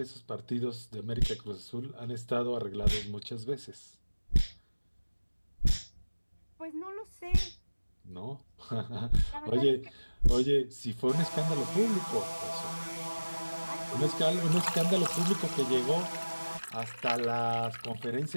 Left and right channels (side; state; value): both; inverted; correlation -1.00